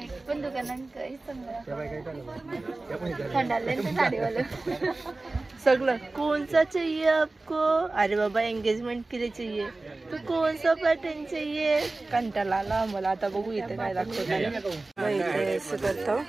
पण दुकानांकडे सगळं कौन सा चाहिए आपको? अरे बाबा एंगेजमेंट के लिए चाहिए तो कौन सा पैटर्न चाहिए? कंटाळा आला मला. आता बघू इथे काय दाखवतो. करतो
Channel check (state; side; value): quieter; left; 3.2 dB